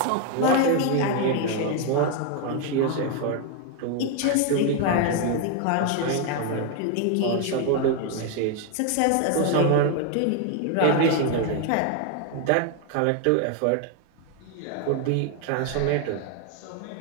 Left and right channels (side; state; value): both; different; correlation 0.01